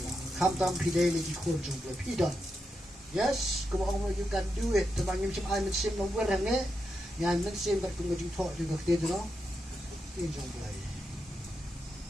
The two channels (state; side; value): normal; both; correlation 0.85